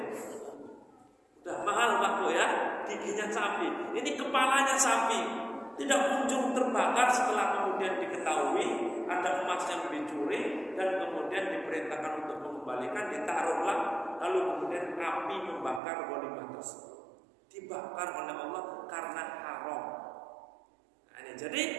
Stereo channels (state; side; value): drops out; left; at 15.8 s